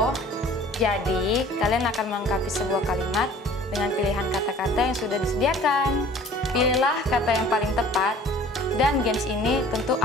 Jadi, kalian akan melengkapi sebuah kalimat dengan pilihan kata-kata yang sudah disediakan. Pilihlah kata yang paling tepat, dan games ini tentu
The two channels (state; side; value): normal; both; correlation 0.49